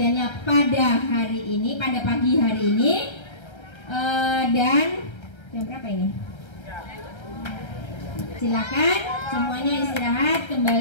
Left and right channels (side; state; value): right; late; 1.3 ms